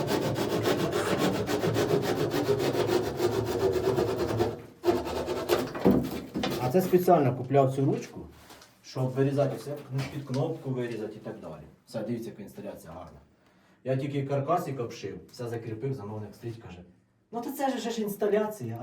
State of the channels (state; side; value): identical; both; correlation 1.00